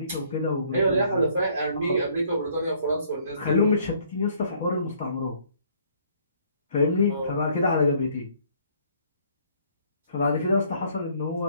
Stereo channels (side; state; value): both; inverted; correlation -0.62